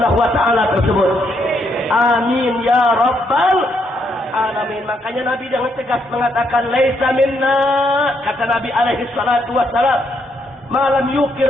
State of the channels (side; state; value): both; normal; correlation 0.75